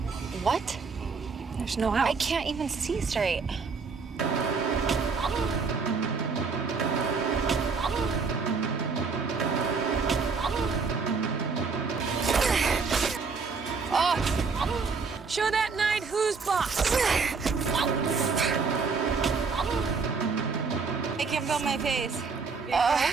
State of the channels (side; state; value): left; quieter; 4.9 dB